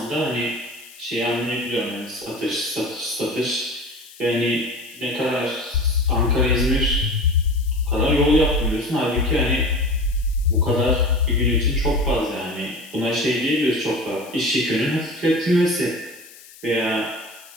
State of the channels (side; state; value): left; noise; hiss, 21 dB below the sound